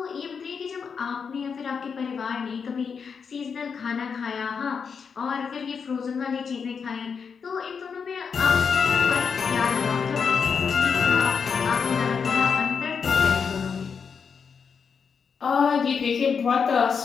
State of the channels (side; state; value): right; quieter; 6.1 dB